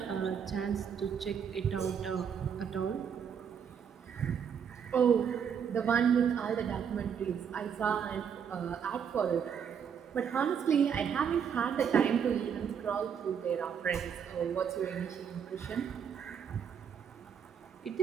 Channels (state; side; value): quieter; left; 7.5 dB